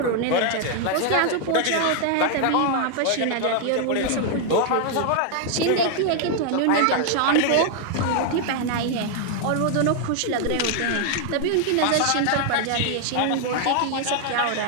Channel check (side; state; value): both; different; correlation 0.00